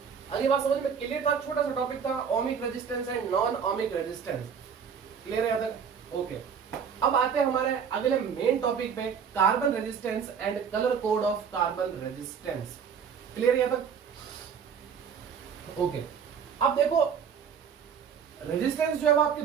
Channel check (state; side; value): quieter; left; 7.0 dB